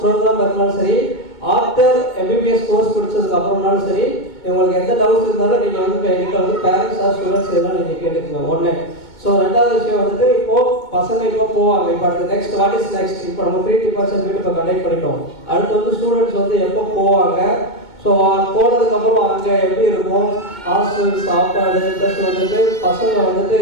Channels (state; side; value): late; right; 2.1 ms